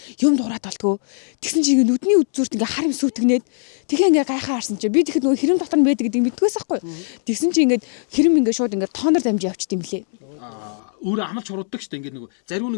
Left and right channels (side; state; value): right; silent; digital silence